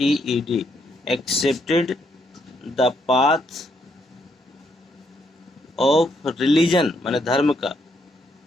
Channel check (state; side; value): normal; both; correlation 0.75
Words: accepted the path of religion, माने धर्म का,